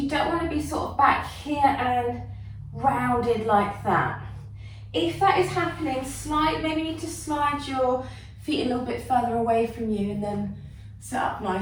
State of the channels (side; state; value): both; identical; correlation 1.00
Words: don't want to be sort of back here and rounded like that. If that is happening, maybe you need to slide your feet a little bit further away from you and then sit up